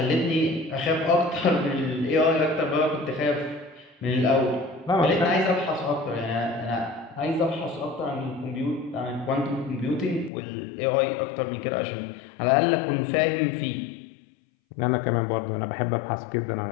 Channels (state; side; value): drops out; right; at 10.3 s